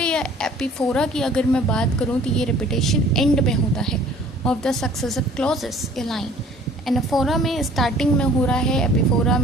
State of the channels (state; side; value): normal; both; correlation 0.52